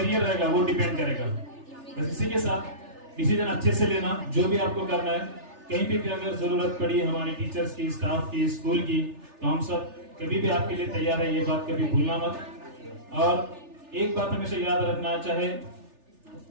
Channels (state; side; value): late; left; 3.4 ms